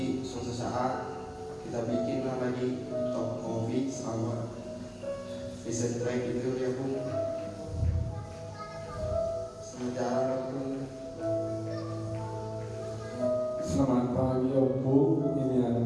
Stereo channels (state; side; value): identical; both; correlation 1.00